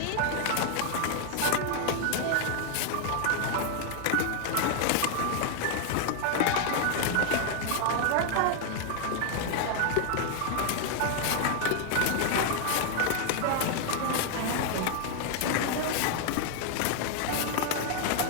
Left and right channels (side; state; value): both; different; correlation 0.00